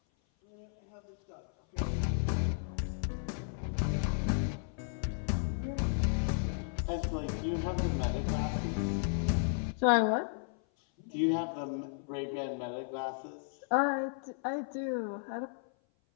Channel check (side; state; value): right; silent; 55 dB below the other